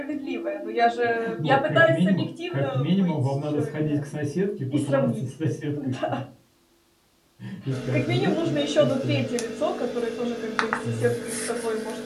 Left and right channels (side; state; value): both; identical; correlation 1.00